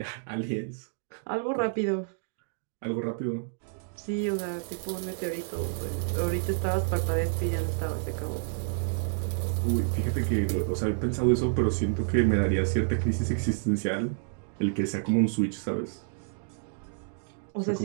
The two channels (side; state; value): left; silent; digital silence